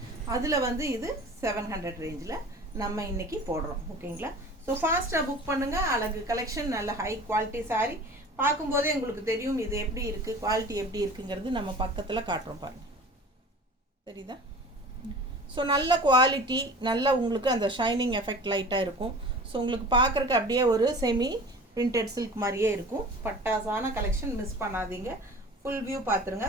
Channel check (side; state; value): both; normal; correlation 0.41